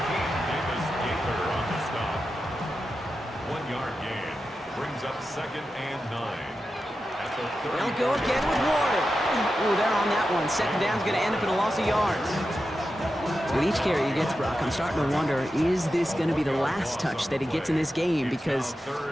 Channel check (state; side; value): normal; both; correlation 0.90